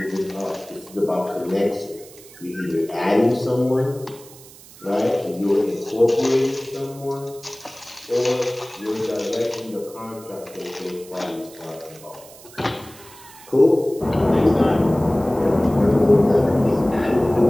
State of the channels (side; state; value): right; noise; hiss, 21 dB below the sound